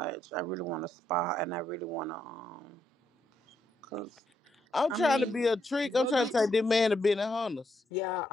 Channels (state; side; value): normal; both; correlation 0.78